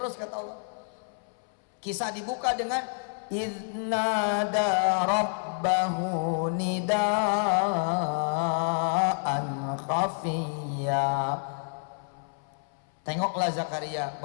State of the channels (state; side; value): silent; right; 59 dB below the other